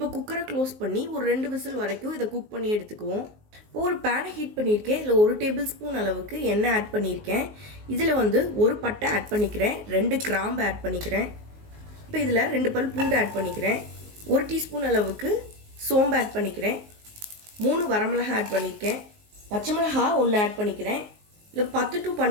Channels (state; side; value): late; left; 19 ms